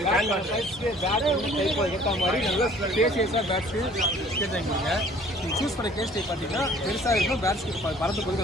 உங்களுக்கு ஏற்ற மாதிரி நல்லா ஸ்பேசியஸாக பேட்ஸு கேஸ் வாங்கிக்கோங்க. நீங்கள் சூஸ் பண்ண கேஸ் டைப் பார்த்தீங்கன்னா பெருசாக இருக்கணும், பேட்ஸ்க்கு பறந்து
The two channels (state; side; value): normal; both; correlation 0.53